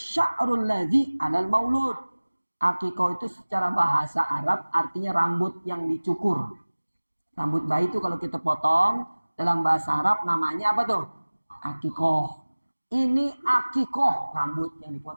ladzi 'alal maulud. Aqiqah itu secara bahasa Arab artinya rambut yang dicukur. Rambut bayi itu kalau kita potong, dalam bahasa Arab namanya apa tuh? Aqiqah. Ini aqiqah, rambut yang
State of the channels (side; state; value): both; inverted; correlation -1.00